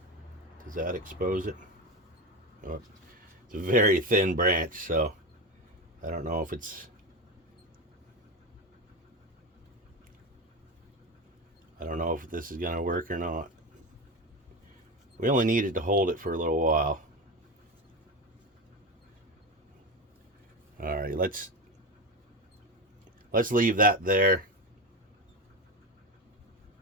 Does that expose it? Oh, it's a very thin branch, so I don't know if it's... I don't know if this is going to work or not. We only needed to hold it for a little while. All right, let's leave that there.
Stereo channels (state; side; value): normal; both; correlation 0.19